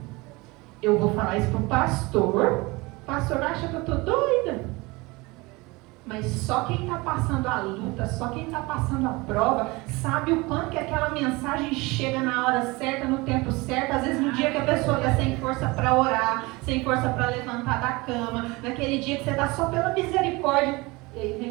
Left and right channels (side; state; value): left; quieter; 23.8 dB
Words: Eu vou falar isso para o pastor acha que eu estou doida. Mas só quem está passando a luta, só quem está passando a prova, sabe o quanto que aquela mensagem chega na hora certa, no tempo certo. Às vezes no dia que a pessoa está sem força para orar, sem força para levantar da cama, naquele dia que você está só pela misericórdia, e aí